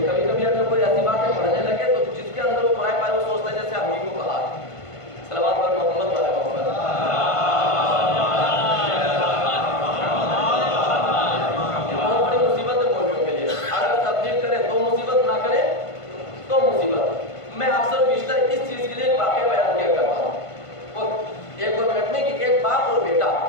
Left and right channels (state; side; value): late; right; 1.5 ms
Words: کبھی کبھی اگر کوئی ایسی باتیں پڑھنے لگے تو جس کے اندر وہ پڑھائے پائے وہ سوچتا ہے جیسے ہم ہی کو کہا۔ صلوات پر محمد والے محمد۔ یہ بہت بڑی مصیبت ہے مولویوں کے لیے، اگر تبلیغ کرے تو مصیبت، نہ کرے تو مصیبت۔ میں اکثر بیشتر اس چیز کے لیے ایک واقعہ بیان کیا کرتا ہوں، وہ 1-2 منٹ میں، کہ ایک باپ اور بیٹا